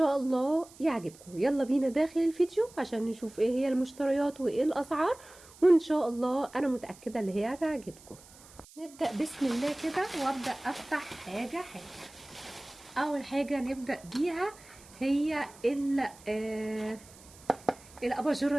الله يعجبكم. يلا بينا داخل الفيديو عشان نشوف ايه هي المشتريات وايه الاسعار، وان شاء الله انا متاكده اللي هي هتعجبكم. نبدا بسم الله كده وابدا افتح حاجه حاجه. اول حاجه نبدا بيها هي الاباجوره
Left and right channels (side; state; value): right; noise; hiss, 22 dB below the sound